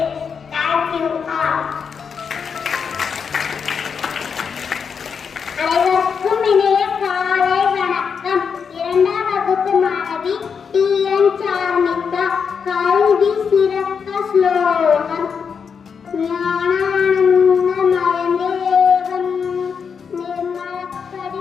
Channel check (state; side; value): quieter; right; 6.3 dB